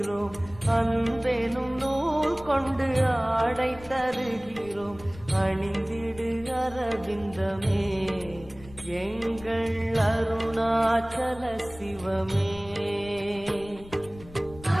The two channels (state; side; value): noise; left; rumble, 19 dB below the sound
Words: அன்பெனும் நூல் கொண்டு ஆடை தருகிறோம். அணிந்திடு அரவிந்தமே, எங்கள் அருணாச்சல சிவமே.